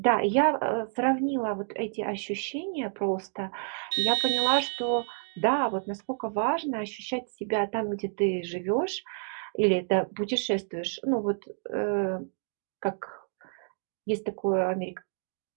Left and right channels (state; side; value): silent; left; digital silence